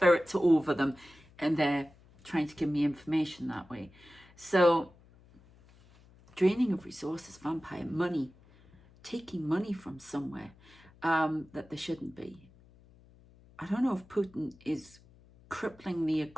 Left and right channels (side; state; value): left; noise; hum, 26 dB below the sound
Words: are over them and they're trying to give me information that way. So draining of resources, vampire, money, taking money from somewhere that there shouldn't be. I don't know if Putin is crippling the